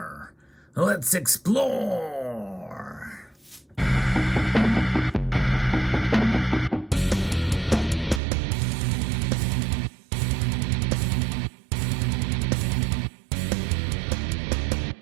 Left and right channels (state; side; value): drops out; left; at 8.2 s